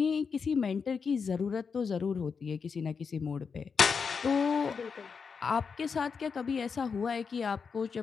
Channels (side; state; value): right; quieter; 5.7 dB